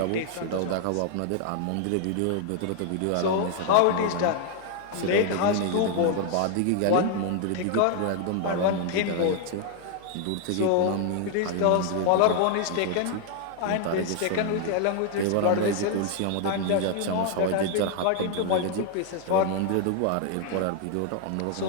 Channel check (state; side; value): different; both; correlation 0.00